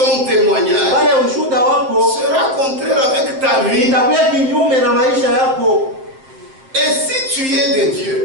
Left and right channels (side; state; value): left; late; 7.6 ms